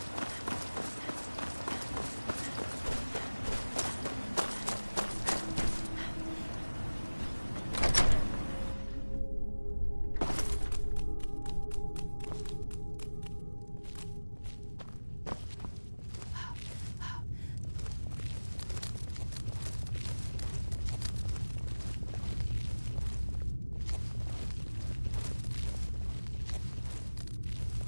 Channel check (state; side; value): inverted; both; correlation -1.00